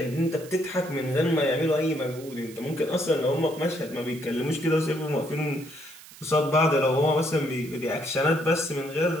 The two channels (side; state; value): right; noise; hiss, 19 dB below the sound